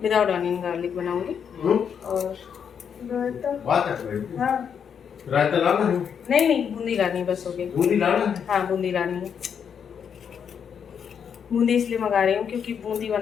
Without onion garlic बनाऊंगी। और हाँ, रायता लाना है? नहीं नहीं, बूंदी लानी बस हो गई। बूंदी लाना है? हाँ, बूंदी लानी है। बूंदी इसलिए मंगा रही हूँ क्योंकि बूंदी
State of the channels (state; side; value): quieter; right; 7.5 dB